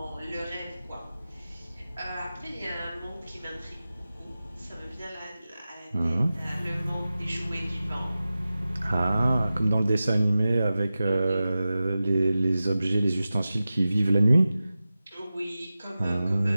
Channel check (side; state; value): both; inverted; correlation -0.95